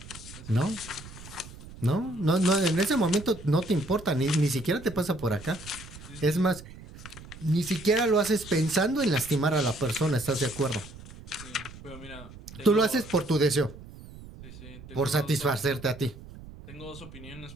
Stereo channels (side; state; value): right; noise; rumble, 16 dB below the sound